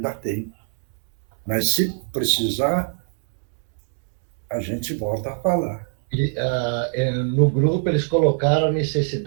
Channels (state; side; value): silent; left; digital silence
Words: tem. Mas se precisar, a gente volta a falar. E, no grupo eles colocaram a